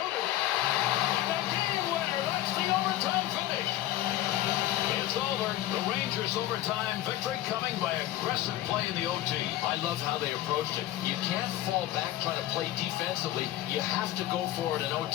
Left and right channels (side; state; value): right; quieter; 14.3 dB